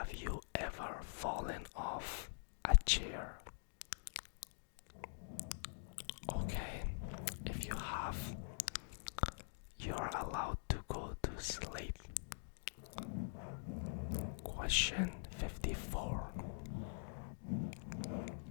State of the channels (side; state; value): right; silent; digital silence